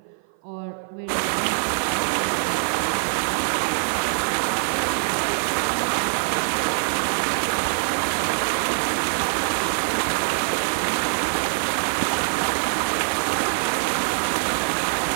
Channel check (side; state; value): left; silent; 55 dB below the other